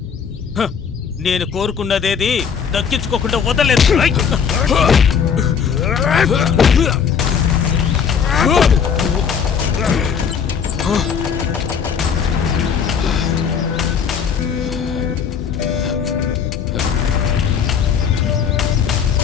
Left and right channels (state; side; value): quieter; right; 7.0 dB